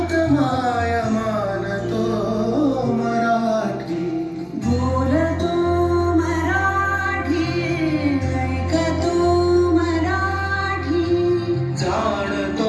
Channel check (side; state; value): both; identical; correlation 1.00